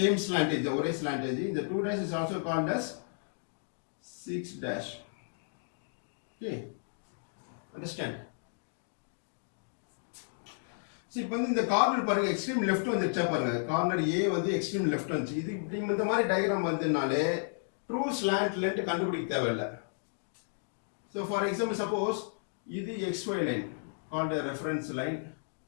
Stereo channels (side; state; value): right; silent; digital silence